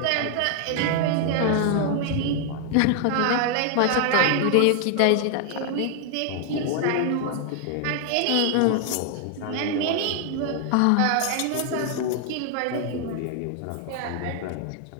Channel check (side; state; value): both; different; correlation 0.00